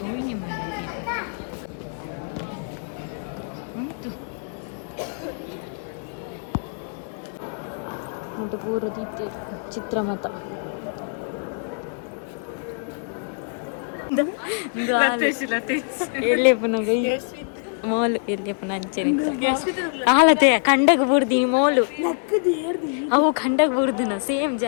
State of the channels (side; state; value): right; silent; 62 dB below the other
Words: ಹೋಗಿ ಮಾಡಿ ಉಂಟು ಉಂಟು ಪೂರ ದೀಪ ಚಿತ್ರಮತ ಎಲ್ಲಿ ಪುನಗ ಮೋಲು ಎಲ್ಲಿ ಪುನಃ ಅಂಚನೆ ಆಲತೆಯ ಕಂಡಗ ಬುಡ್ದಿ ಮೋಲು ಅವು ಕಂಡಗ ಬುಡ್ದಿನ ಸೇಮ್